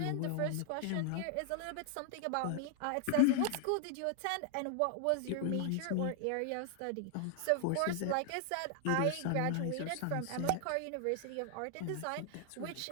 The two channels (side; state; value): both; different; correlation 0.00